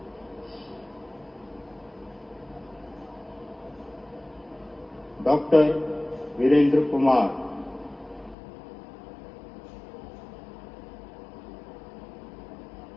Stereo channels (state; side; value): drops out; right; at 8.3 s